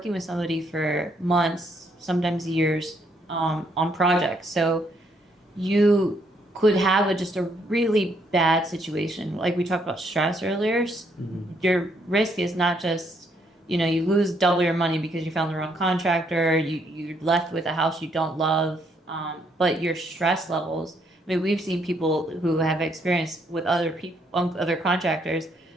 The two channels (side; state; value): both; normal; correlation 0.71